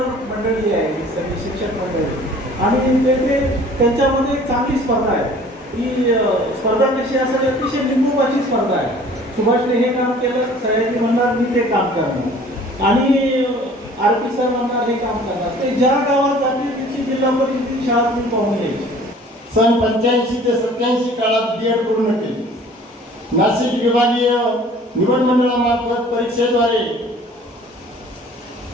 मंडळी आहे, सगळी शिक्षक मंडळी. आणि ते त्यांच्यामध्ये एक चांगली स्पर्धा आहे. ही स्पर्धा कशी असेल, अतिशय लिंबूबाची स्पर्धा आहे. सुभाषने हे काम केलं, सयाजी म्हणणार मी ते काम करणार, आणि आरपी सर म्हणणार हे काम करणार. ते ज्या गावात जाते तिची जिल्हा परिषदेची शाळा तुम्ही पाहून यायची. सन 85 ते 87 काळात B.Ed पूर्ण केली. नाशिक विभागीय निवड मंडळामार्फत परीक्षेद्वारे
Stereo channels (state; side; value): normal; both; correlation 0.50